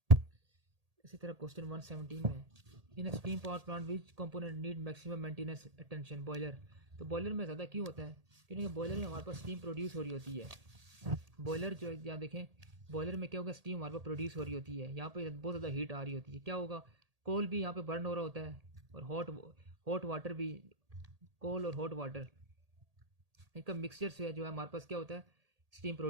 इसी तरह क्वेश्चन 117 में in steam power plant which component need maximum maintenance attention. Boiler. तो बॉयलर में ज़्यादा क्यों होता है, क्योंकि बॉयलर में हमारे पास स्टीम प्रोड्यूस हो रही होती है। बॉयलर जो यहाँ देखें, बॉयलर में क्या होगा, स्टीम हमारे पास प्रोड्यूस हो रही होती है, यहाँ पे बहुत ज़्यादा हीट आ रही होती है। क्या होगा, कोल भी यहाँ पे बर्न हो रहा होता है, और हॉट वाटर भी, कोल और हॉट वाटर इनका मिक्सचर से जो है हमारे पास क्या होता है, स्टीम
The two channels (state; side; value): late; left; 1.8 ms